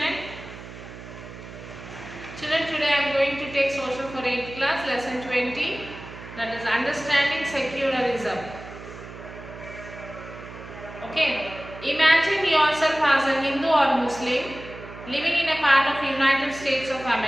Children, today I am going to take social for 8th class, lesson 20, that is understanding secularism. Okay, imagine yourself as a Hindu or Muslim living in a part of United States of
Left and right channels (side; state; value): right; noise; hum, 14 dB below the sound